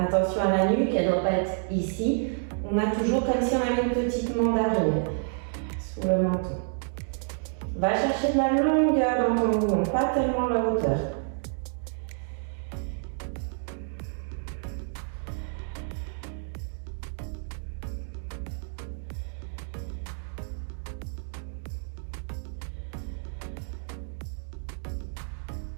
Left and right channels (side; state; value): left; silent; digital silence